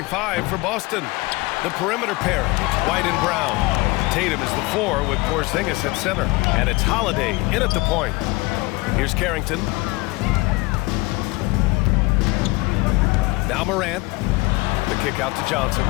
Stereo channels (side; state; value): right; quieter; 23.1 dB